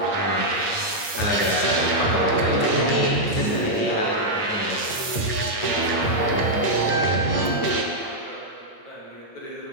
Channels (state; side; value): late; right; 8.8 ms